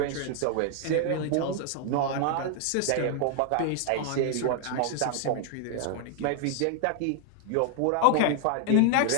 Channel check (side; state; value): both; different; correlation 0.00